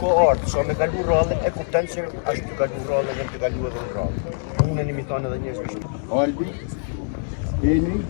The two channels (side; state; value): right; silent; digital silence